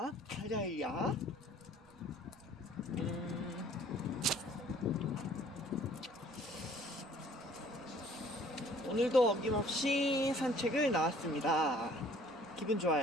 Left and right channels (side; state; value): right; noise; rumble, 27 dB below the sound